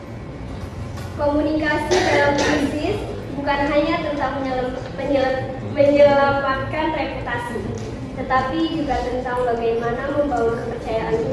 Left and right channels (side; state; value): both; identical; correlation 1.00